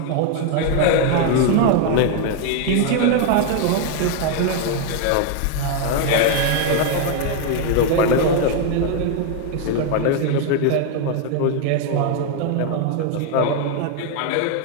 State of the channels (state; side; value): different; both; correlation 0.01